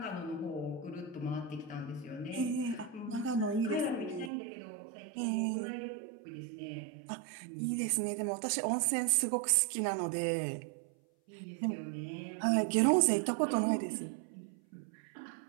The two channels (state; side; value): drops out; left; at 4.3 s